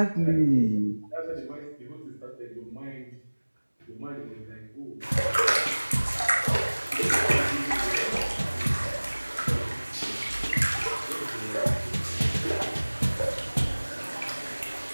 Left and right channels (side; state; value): both; inverted; correlation -1.00